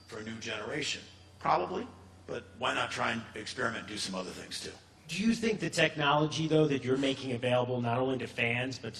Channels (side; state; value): both; identical; correlation 1.00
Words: for a new generation? Probably, but why not try and experiment and do some other things too? Do you think the technology, though, that you're making available not only to fans but